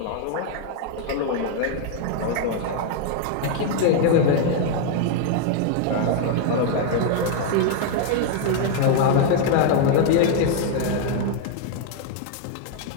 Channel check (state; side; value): different; both; correlation 0.00